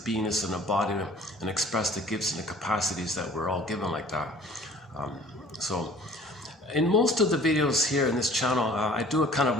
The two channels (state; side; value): normal; both; correlation 0.50